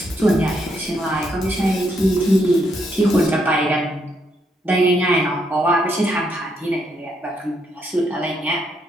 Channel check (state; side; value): normal; both; correlation 0.76